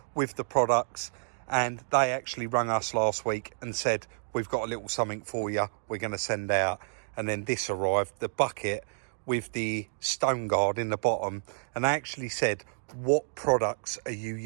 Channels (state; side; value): silent; left; digital silence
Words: with the products, and they actually rang us last week and said, we've got a little something for you, we're going to send out. And then this arrived, the bucket with the stone guard in the bottom, and they actually said, what products are you